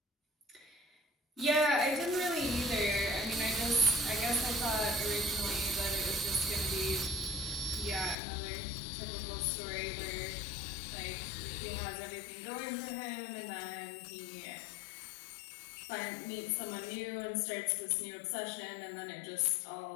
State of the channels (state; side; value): drops out; right; at 8.2 s